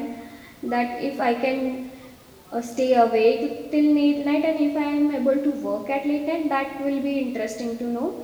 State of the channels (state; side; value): identical; both; correlation 1.00